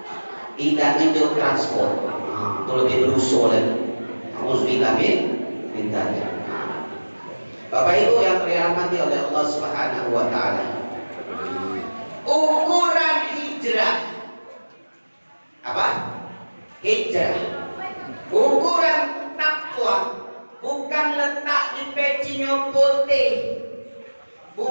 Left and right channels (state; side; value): inverted; both; correlation -1.00